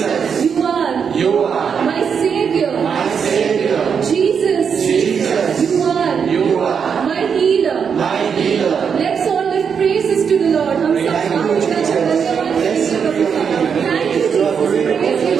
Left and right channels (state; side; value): quieter; left; 6.7 dB